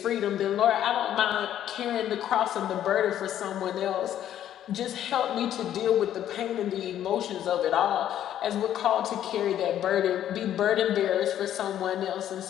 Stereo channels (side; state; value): right; quieter; 11.1 dB